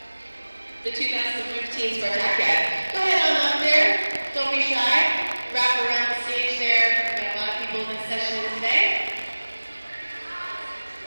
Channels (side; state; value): both; inverted; correlation -1.00